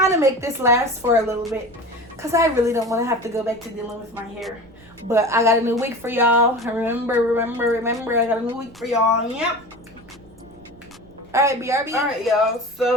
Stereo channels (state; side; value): noise; right; rumble, 26 dB below the sound